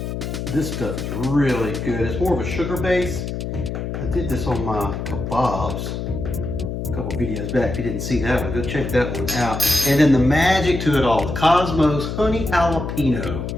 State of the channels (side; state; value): left; noise; hum, 5 dB below the sound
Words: This stuff is really good. It's more of a sugar base. I did this on my kebabs a couple videos back. If you didn't see that one, go check that one out. And then the magic to it all, the Kosmos Honey Jalapeno.